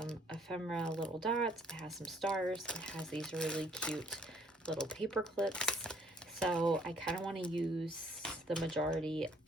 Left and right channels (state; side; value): normal; both; correlation 0.62